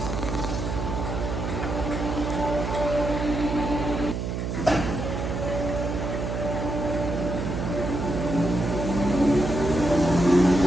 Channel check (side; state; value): right; noise; hum, 3 dB below the sound